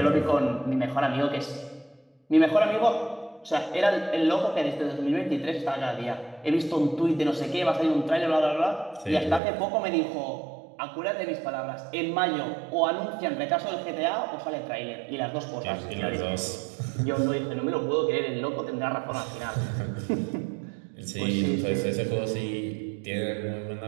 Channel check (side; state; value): left; drops out; at 9.4 s